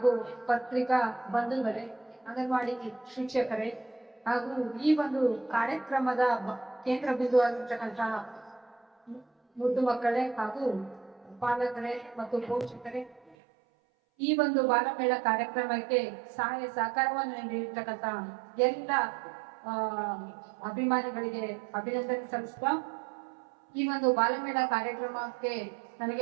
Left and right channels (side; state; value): left; drops out; at 13.4 s